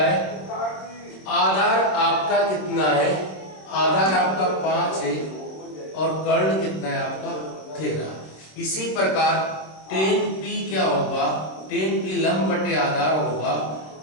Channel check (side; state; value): right; late; 26 ms